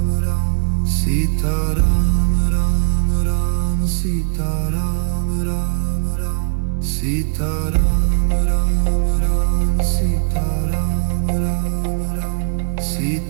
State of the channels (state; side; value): silent; left; digital silence